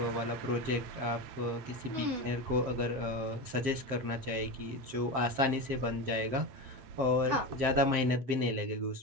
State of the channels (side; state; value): left; late; 7.6 ms